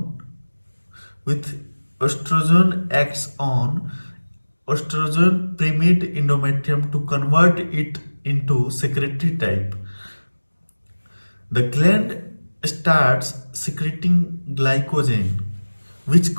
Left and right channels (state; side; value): inverted; both; correlation -1.00